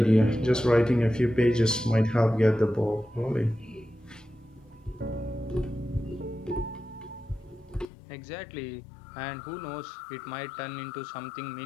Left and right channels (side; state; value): right; drops out; at 7.9 s